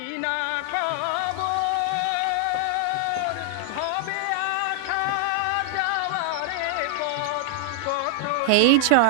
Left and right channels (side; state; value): both; different; correlation 0.00